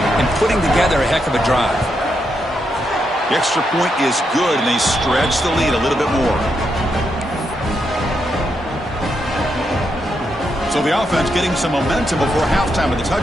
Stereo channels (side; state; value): both; normal; correlation 0.81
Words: and putting together a heck of a drive. The extra point is good, and they stretch the lead a little bit more. So the offense getting some momentum before halftime of the